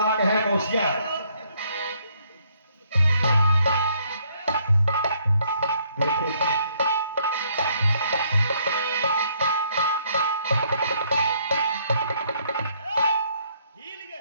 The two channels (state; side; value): inverted; both; correlation -0.68